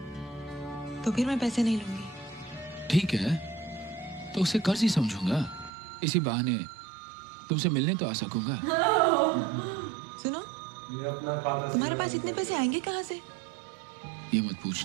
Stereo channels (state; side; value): drops out; left; at 5.7 s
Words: तो फिर मैं पैसे नहीं लूंगी। ठीक है, तो उसे कर्ज ही समझूंगा। इसी बहाने तुमसे मिलने तो आ सकूंगा। सुनो, ये अपना खाता तुम्हारे पास इतने पैसे आएंगे कहाँ से? ये मत